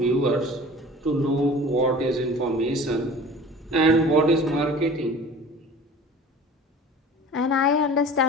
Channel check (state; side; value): normal; both; correlation 0.42